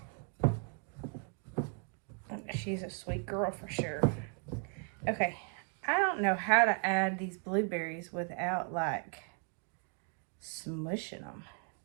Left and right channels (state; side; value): quieter; left; 37.8 dB